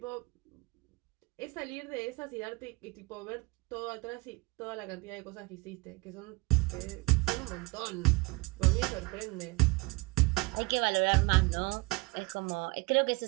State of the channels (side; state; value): left; quieter; 24.8 dB